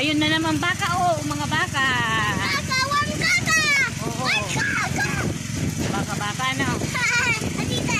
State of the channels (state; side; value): identical; both; correlation 1.00